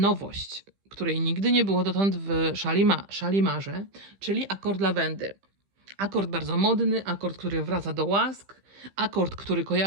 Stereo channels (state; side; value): late; left; 15 ms